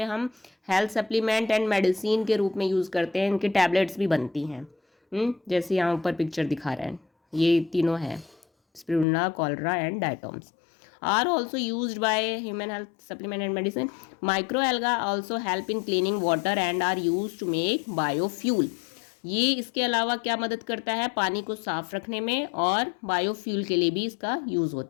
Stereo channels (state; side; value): drops out; right; at 9.1 s